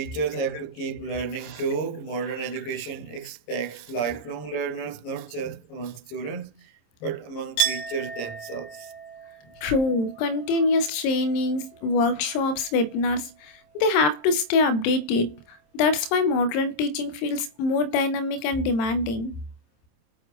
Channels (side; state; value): right; late; 26 ms